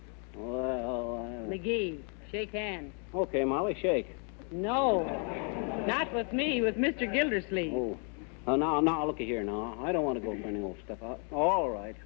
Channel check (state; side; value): quieter; right; 39.7 dB